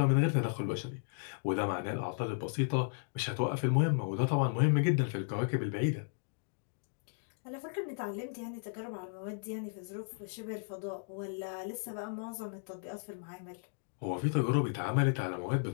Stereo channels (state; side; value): silent; right; digital silence